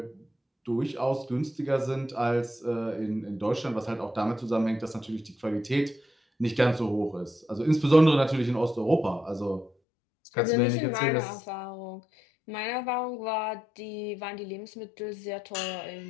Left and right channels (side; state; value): right; drops out; at 9.7 s